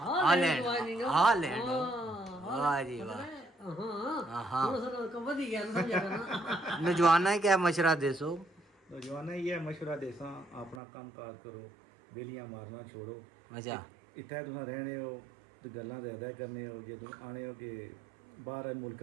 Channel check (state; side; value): drops out; left; at 10.8 s